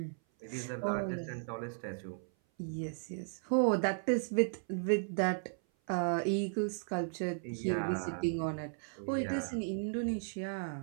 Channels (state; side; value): silent; left; 54 dB below the other